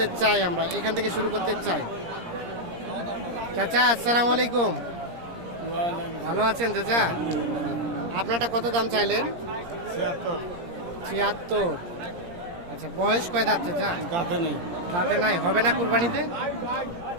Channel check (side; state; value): left; late; 17 ms